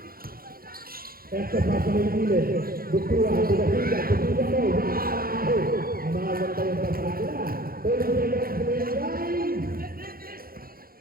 Eto pa sa may gilid. Bukura, Budahiga, Budahiga mo. Wow! Maganda yung pasakila. 30 seconds remaining time.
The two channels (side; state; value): left; late; 0.43 ms